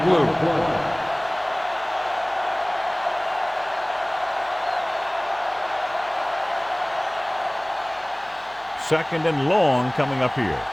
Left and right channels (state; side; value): noise; left; hum, 29 dB below the sound